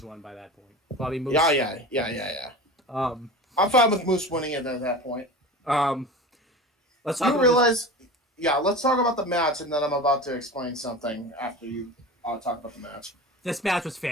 one by that point. Probably Moose. Yeah. I'm fine with Moose winning it at that point. Let's talk about the match, and then I'm about to explain something after you talk about the match. This match was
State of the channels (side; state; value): both; normal; correlation 0.32